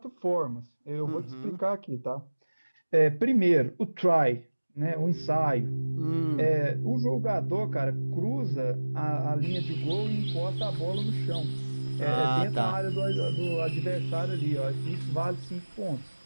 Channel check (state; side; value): inverted; both; correlation -1.00